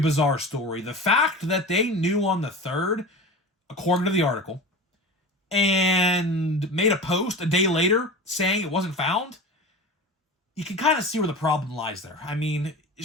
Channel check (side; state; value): both; normal; correlation 0.31